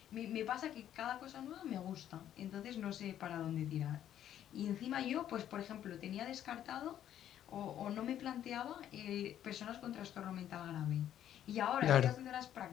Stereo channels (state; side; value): quieter; right; 10.9 dB